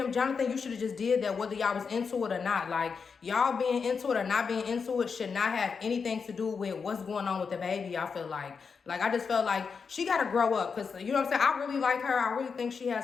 Jonathan, you should have just did that whether y'all was into it or not. Like, y'all being into it or not being into it should not have anything to do with what's going on with the baby, I feel like. Like, I just felt like she got to grow up. Because, you know what I'm saying? I really like her. I really think she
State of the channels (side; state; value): right; quieter; 5.6 dB